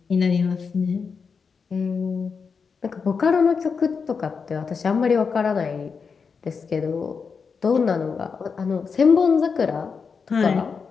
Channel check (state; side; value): quieter; right; 5.5 dB